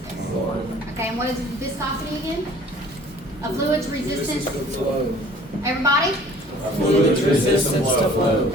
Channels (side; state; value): both; normal; correlation 0.51